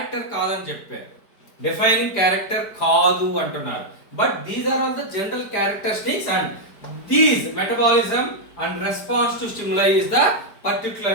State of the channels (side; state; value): right; late; 4.8 ms